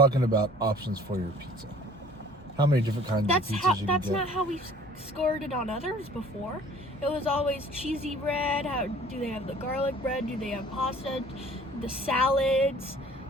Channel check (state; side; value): normal; both; correlation 0.51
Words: about options for your pizza. How many different kinds of pizzas you can get? That's not how we've scored it on others before. It was always cheesy bread. How do they have the garlic bread? Do they have pasta? The salads,